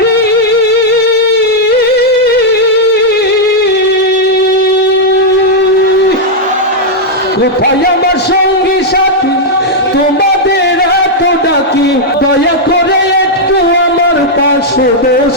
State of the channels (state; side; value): normal; both; correlation -0.03